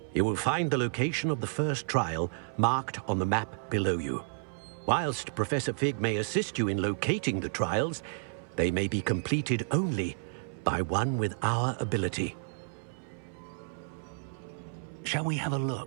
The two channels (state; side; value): silent; left; 57 dB below the other